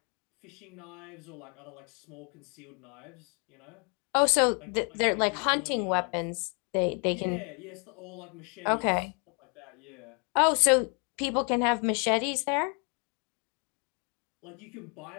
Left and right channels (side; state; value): right; quieter; 36.4 dB